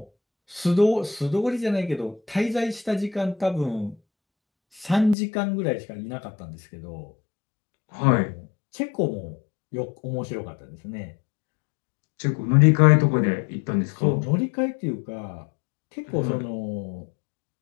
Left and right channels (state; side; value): drops out; right; at 5.2 s